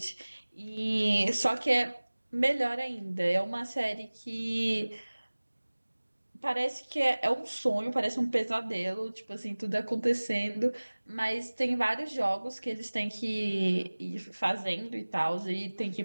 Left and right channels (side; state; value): both; inverted; correlation -1.00